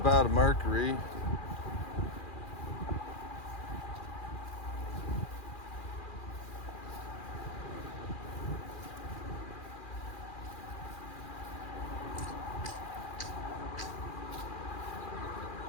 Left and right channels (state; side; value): late; right; 2.4 ms